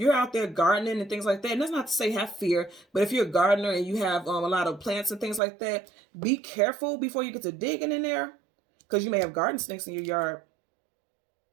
out there gardening and things like that, and that's not to say have fear, but if you're a gardener and you have a lot of plants and things like that, be careful before you get to digging in there, because you may have garden snakes in your yard.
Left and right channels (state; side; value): drops out; left; at 5.4 s